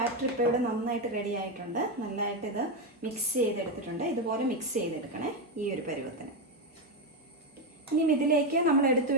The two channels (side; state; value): both; normal; correlation 0.09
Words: ഇപ്പോൾ ഇവിടെ നന്നായിട്ട് റെഡി ആയിട്ടുണ്ട്. നന്നായിട്ട് ഇത് മിക്സ് ചെയ്തെടുത്തിട്ടുണ്ട്. ഇതുപോലെ മിക്സ് ചെയ്തെടുക്കണേ ഈ ഒരു പരുവത്തിന്. ഇനി ഇതിലേക്ക് നമ്മൾ എടുത്തു